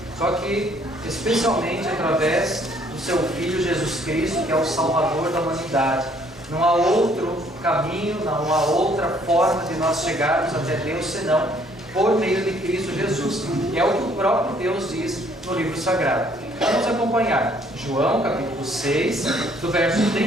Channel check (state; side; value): normal; both; correlation 0.63